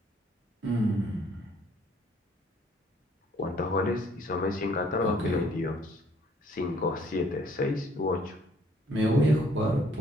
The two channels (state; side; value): normal; both; correlation 0.62